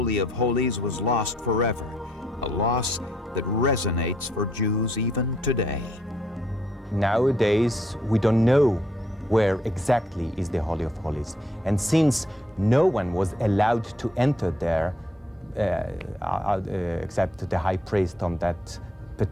of Holies was lost forever, a loss that resonates for Jews even today. Nowadays, we don't know where exactly is the Holy of Holies. And since no one was allowed to enter there, except the high priest on that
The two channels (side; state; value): both; normal; correlation 0.70